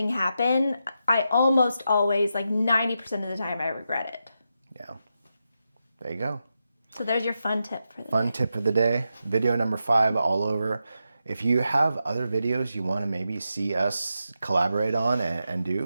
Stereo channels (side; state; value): both; inverted; correlation -0.87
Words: happen, I almost always, like, 90% of the time, I regret it. Yeah. There you go. So there's your fun tip for the Fun tip of the day. Video number 5 all over. If you have other videos you want to maybe see us collaborate on and